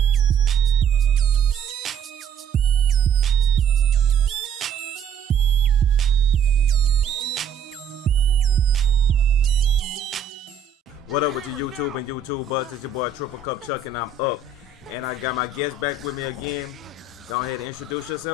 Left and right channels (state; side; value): quieter; left; 6.4 dB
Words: What up with your YouTube and YouTubers? It's your boy Triple Cup Chuck and I'm up. And I got my guest back with me again. Go ahead and introduce